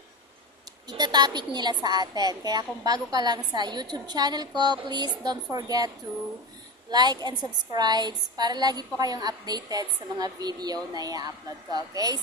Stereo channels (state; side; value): normal; both; correlation 0.21